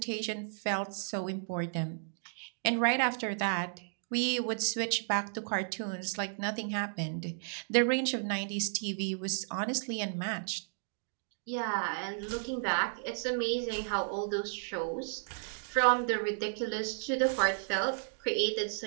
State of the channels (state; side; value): silent; left; digital silence